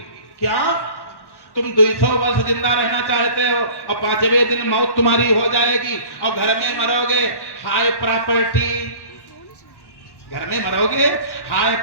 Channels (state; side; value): late; right; 1.1 ms